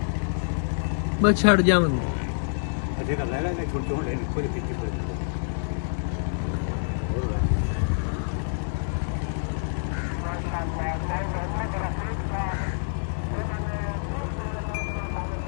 ਬਸ ਛੱਡ ਜਾਵਾਂਗੇ ਅਜੇ ਕਰ ਲੈ ਲੈ ਛੋਟੇ ਹੋਣੇ ਕੋਈ ਫਿੱਕੀ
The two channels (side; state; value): right; silent; 60 dB below the other